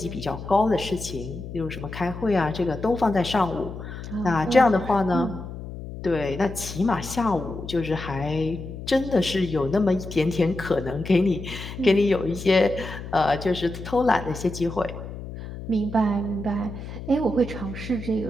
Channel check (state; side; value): noise; left; hum, 10 dB below the sound